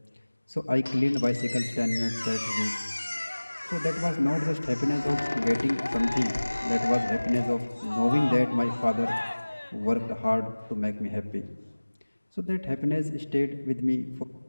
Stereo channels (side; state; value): both; inverted; correlation -1.00